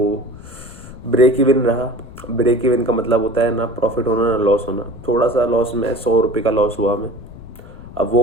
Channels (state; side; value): noise; left; rumble, 17 dB below the sound